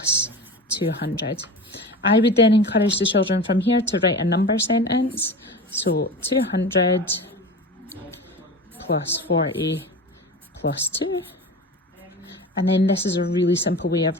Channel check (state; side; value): normal; both; correlation 0.31